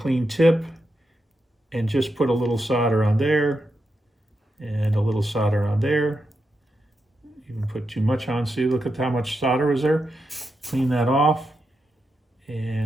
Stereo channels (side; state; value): both; normal; correlation 0.86